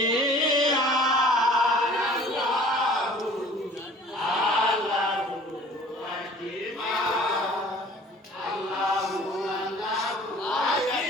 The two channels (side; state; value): both; normal; correlation 0.49